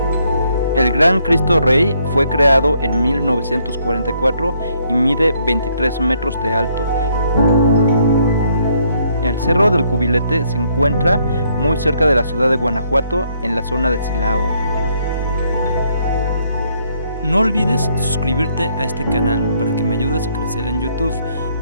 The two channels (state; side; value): inverted; both; correlation -0.70